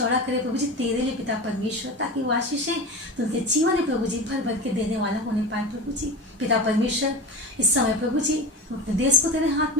करे प्रभु जी तेरे लिए पिता परमेश्वर, ताकि वो आशीषें तो उनके जीवन में प्रभु जी भर भर के देने वाला होने पाए प्रभु जी। पिता परमेश्वर, इस समय प्रभु जी अपने देश को तेरे हाथ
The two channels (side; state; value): both; normal; correlation 0.28